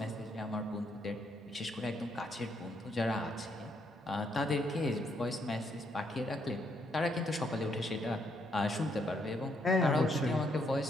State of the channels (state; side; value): normal; both; correlation 0.74